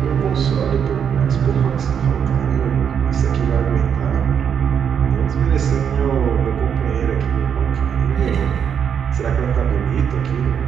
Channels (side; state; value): left; quieter; 7.8 dB